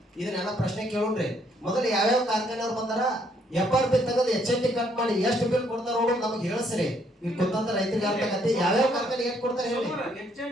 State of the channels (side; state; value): both; normal; correlation 0.69